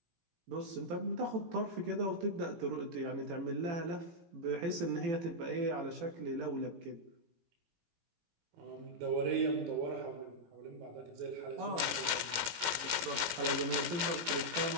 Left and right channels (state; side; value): late; left; 17 ms